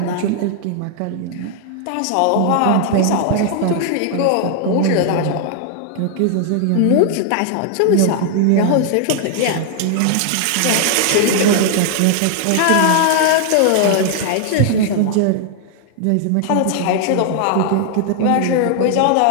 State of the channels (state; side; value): different; both; correlation 0.00